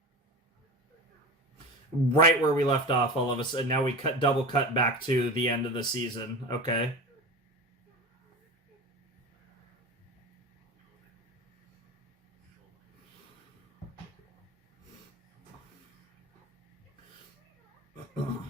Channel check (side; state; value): both; normal; correlation 0.28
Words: Right where we left off, all of a sudden. Now we double cut back to the end of the season. Okay.